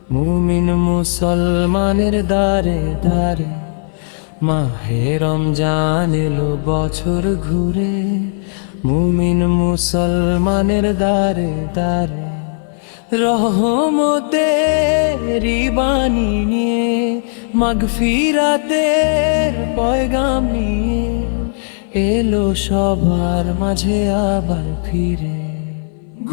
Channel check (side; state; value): right; silent; 58 dB below the other